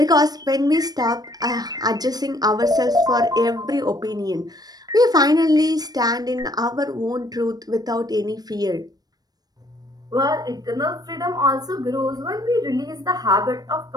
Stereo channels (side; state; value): left; late; 0.19 ms